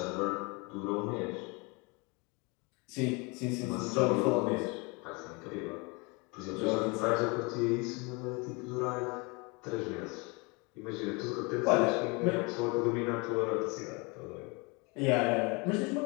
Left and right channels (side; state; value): right; quieter; 29.0 dB